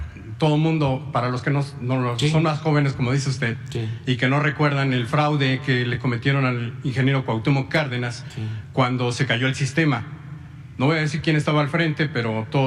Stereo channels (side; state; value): both; identical; correlation 1.00